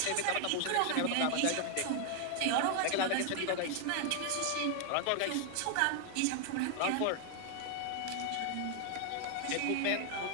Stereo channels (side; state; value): both; different; correlation 0.00